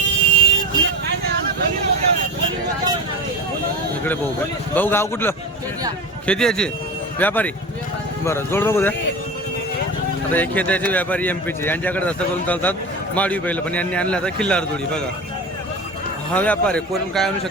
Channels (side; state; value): both; normal; correlation 0.29